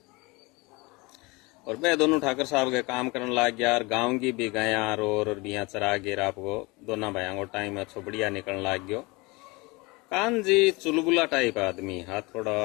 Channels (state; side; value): quieter; right; 25.1 dB